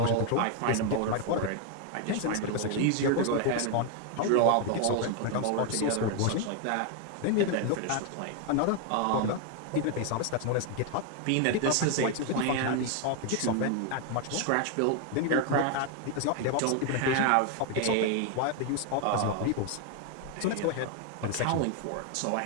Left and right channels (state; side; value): different; both; correlation 0.01